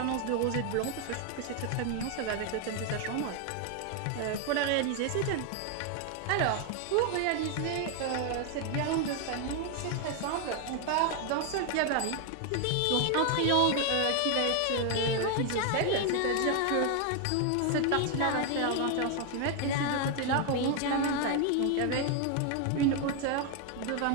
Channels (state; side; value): different; both; correlation 0.01